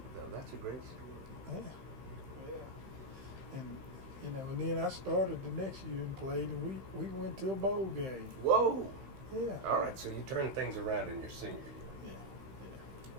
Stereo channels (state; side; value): late; left; 15 ms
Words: though. That's a great story. Yeah. Yeah. And, you know, and then I started the next year and played, and we went to a bowl game. Whoa. Yeah. All right. So you turned things around in your senior year. Yeah.